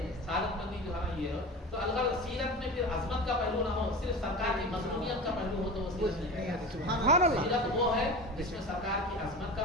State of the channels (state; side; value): normal; both; correlation 0.31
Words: سعادت مندی جو ہے نا یہ تو اگر سیرت میں پھر عظمت کا پہلو نہ ہو، صرف سرکار کی مظلومیت کا پہلو ہو تو وہ سیرت نہیں ہے۔ سیرت وہ ہے جس میں سرکار کی عظمت کا